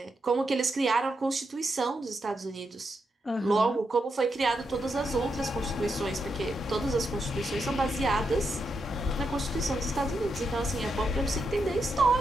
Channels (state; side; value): normal; both; correlation 0.83